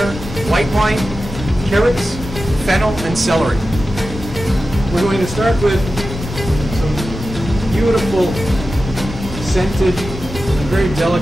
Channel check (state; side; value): normal; both; correlation 0.93